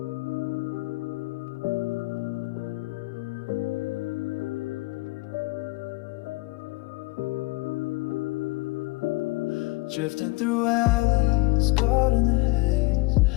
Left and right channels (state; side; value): quieter; right; 22.9 dB